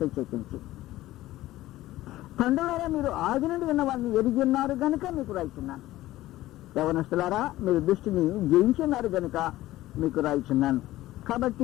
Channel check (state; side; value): quieter; right; 16.0 dB